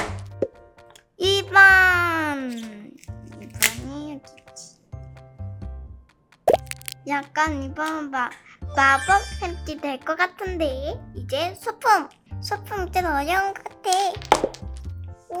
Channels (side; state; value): both; identical; correlation 1.00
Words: 2번이 여기 있지. 약간 이번은 마법 햄찌 될 것 같은데. 이제 소품 좀 어려운 것 같아.